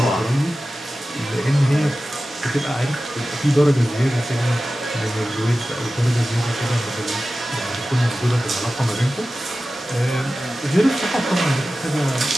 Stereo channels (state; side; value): normal; both; correlation 0.95